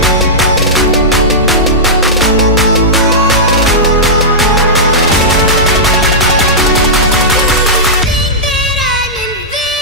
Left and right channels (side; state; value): both; normal; correlation -0.12